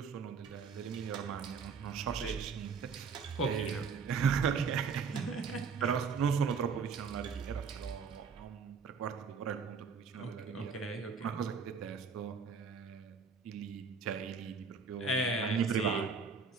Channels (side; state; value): left; quieter; 5.4 dB